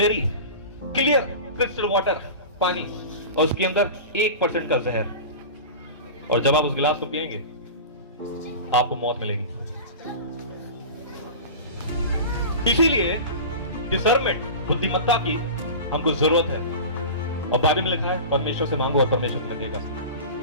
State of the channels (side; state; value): both; inverted; correlation -0.32